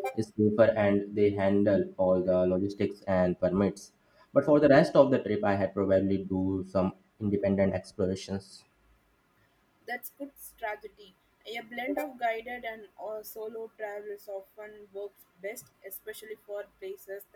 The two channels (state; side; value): identical; both; correlation 1.00